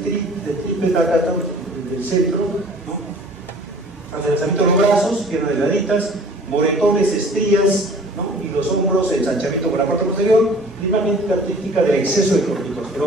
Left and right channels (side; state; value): both; normal; correlation 0.49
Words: acá del centro, ¿no? Adelgazamiento de los brazos, piernas delgaditas, moretones, estrías, ¿no? Y los hombros, ensanchamiento por la parte posterior, la imagen característica del exceso de